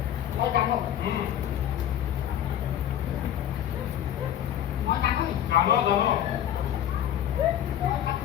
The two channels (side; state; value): right; quieter; 11.0 dB